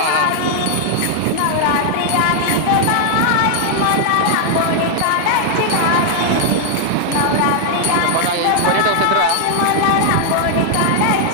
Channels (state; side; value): different; both; correlation 0.00